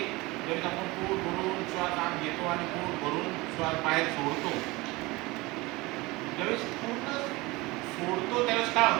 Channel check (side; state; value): left; quieter; 22.4 dB